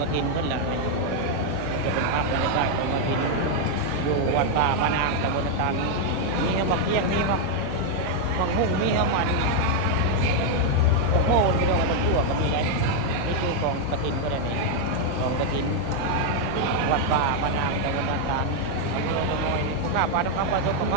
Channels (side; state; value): both; different; correlation 0.00